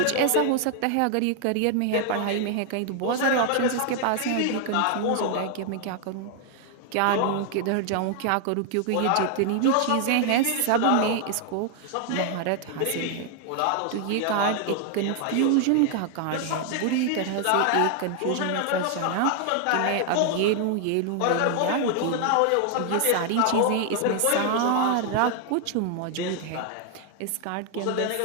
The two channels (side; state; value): both; different; correlation 0.00